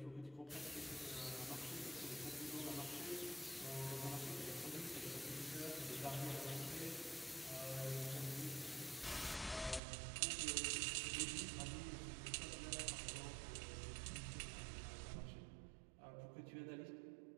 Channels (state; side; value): drops out; left; at 9.8 s